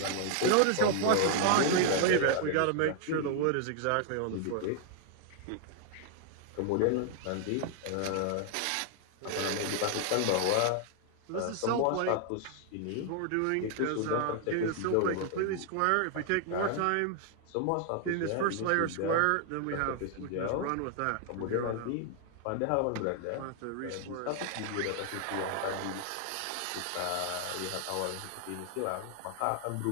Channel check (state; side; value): different; both; correlation 0.00